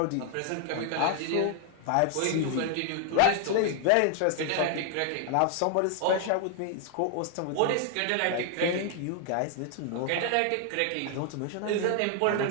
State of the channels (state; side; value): different; both; correlation 0.00